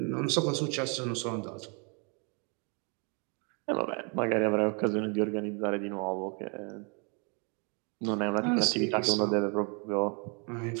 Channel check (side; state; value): left; quieter; 35.6 dB